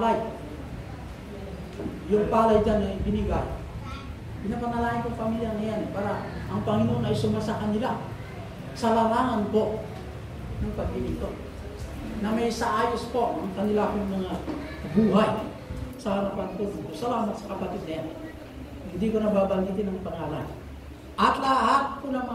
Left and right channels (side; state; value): both; identical; correlation 1.00